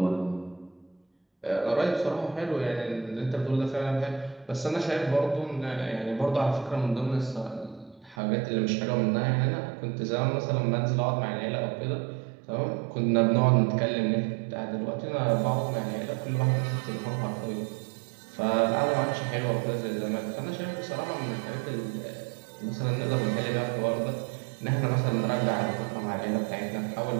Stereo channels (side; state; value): left; drops out; at 8.2 s